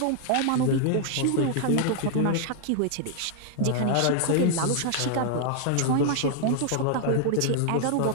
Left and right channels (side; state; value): both; different; correlation -0.01